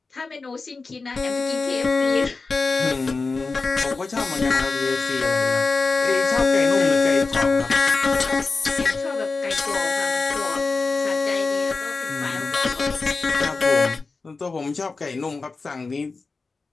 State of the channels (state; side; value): quieter; right; 4.0 dB